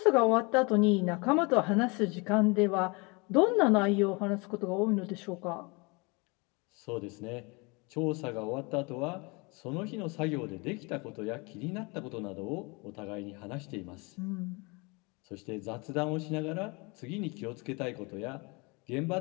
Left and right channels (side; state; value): right; quieter; 28.4 dB